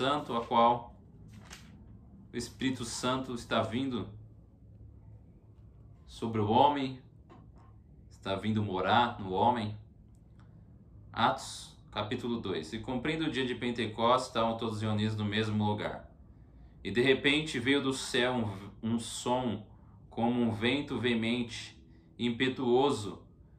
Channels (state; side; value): identical; both; correlation 1.00